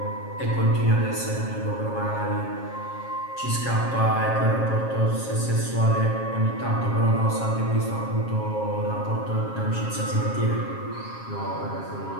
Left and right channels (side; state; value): right; late; 7.4 ms